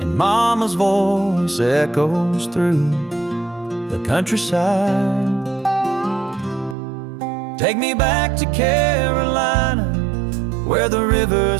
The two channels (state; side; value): drops out; left; at 6.8 s